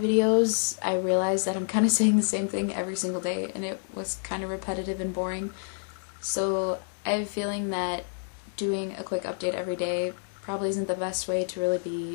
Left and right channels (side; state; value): right; silent; digital silence